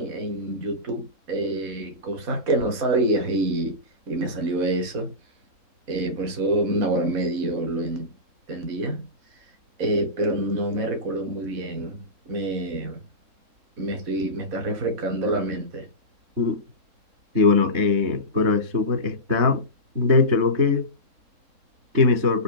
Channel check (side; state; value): left; late; 3.7 ms